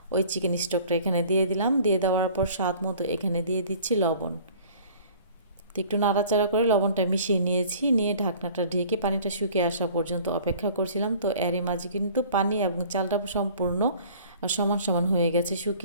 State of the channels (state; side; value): inverted; both; correlation -0.49